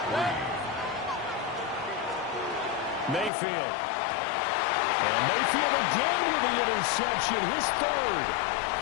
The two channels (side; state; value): right; drops out; at 3.3 s